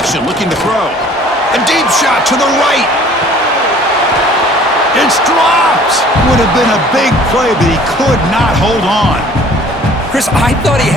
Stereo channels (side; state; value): both; normal; correlation 0.52